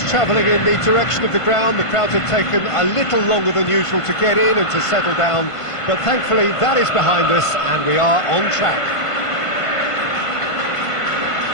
travelling in the direction of the ground. The crowds had taken a little longer than usual to get in and to settle down, but thankfully that is behind us, and we are on track.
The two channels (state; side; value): late; right; 1.5 ms